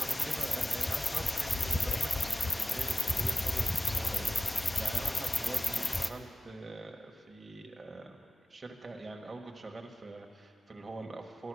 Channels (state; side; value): normal; both; correlation 0.97